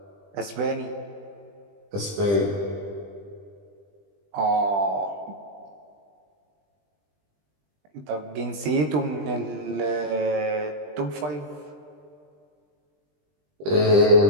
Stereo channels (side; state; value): left; late; 20 ms